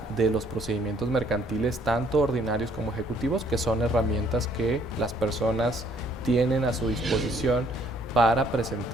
de los procedimientos mercantiles, tanto ordinarios como ejecutivos, que son herramientas que las personas tienen a su disposición para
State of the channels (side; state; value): both; normal; correlation 0.64